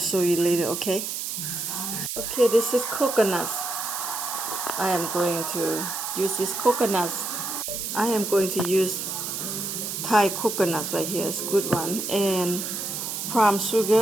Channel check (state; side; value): noise; right; hiss, 4 dB below the sound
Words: you later, okay? Okay, this is coconuts. I am going to use these coconuts. I am going to use Thai coconuts right here. It's a good one. And palm